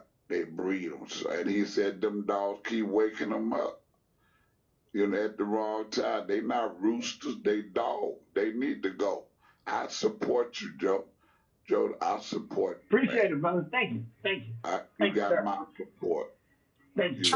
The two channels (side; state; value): both; identical; correlation 1.00